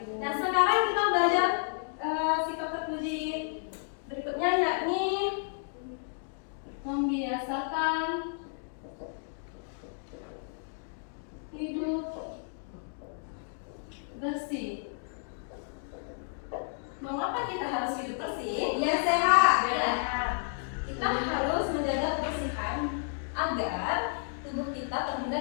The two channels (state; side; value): silent; right; digital silence